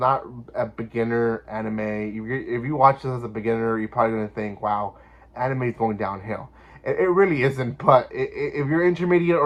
a beginner anime. If you watch this as a beginner, you're probably gonna think, "Wow, anime is going downhill." It really isn't. But if you're intermediate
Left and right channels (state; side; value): identical; both; correlation 1.00